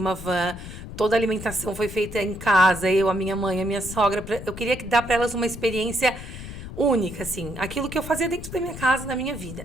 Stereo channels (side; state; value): left; noise; rumble, 11 dB below the sound